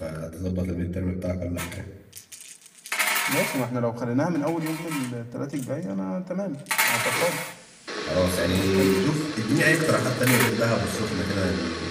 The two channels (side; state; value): both; identical; correlation 1.00